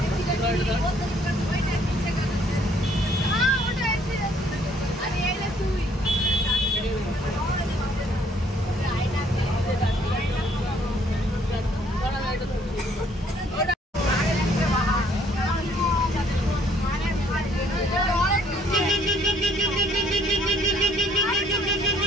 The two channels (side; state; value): both; normal; correlation 0.63